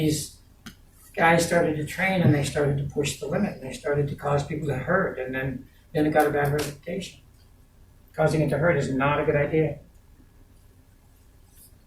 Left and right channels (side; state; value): both; identical; correlation 1.00